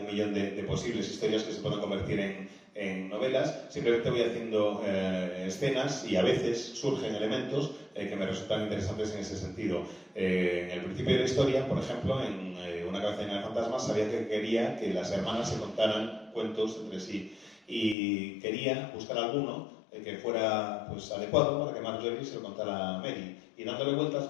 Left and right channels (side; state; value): right; drops out; at 17.9 s